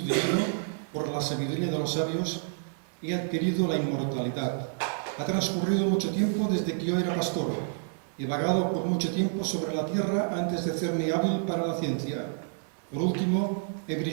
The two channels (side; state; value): left; silent; digital silence